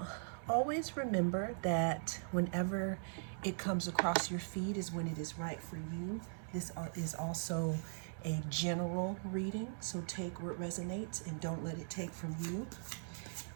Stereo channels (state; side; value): silent; left; 51 dB below the other